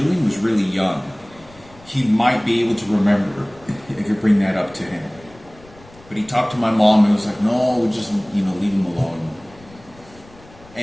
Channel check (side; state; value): left; noise; rumble, 24 dB below the sound